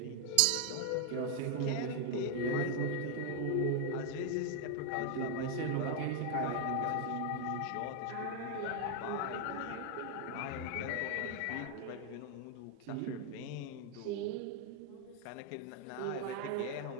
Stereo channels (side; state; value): both; different; correlation 0.00